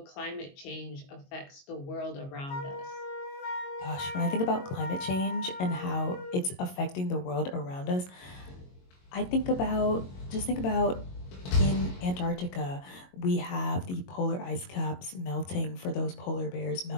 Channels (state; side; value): late; right; 22 ms